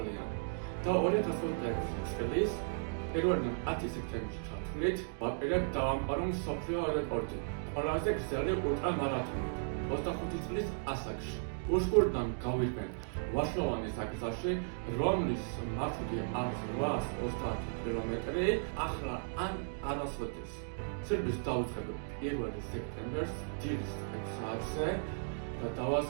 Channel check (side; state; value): left; silent; digital silence